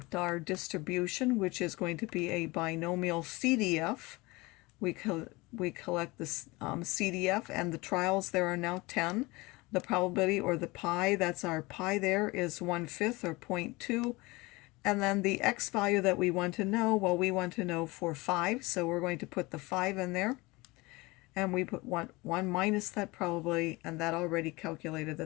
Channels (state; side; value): quieter; right; 23.1 dB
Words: our distribution, which is going to be a binomial CDF. We collect this CDF, and the trials there are now 10. The probability, or the pi, that's our pi there, is 1/5 or 0.2. And then the x value that we want to know, well, we want to know for 5, so we're going to put the 5 in there. and we put 1 minus that probability, and that already calculated